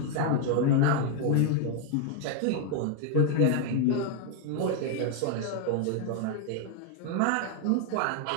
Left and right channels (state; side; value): different; both; correlation 0.00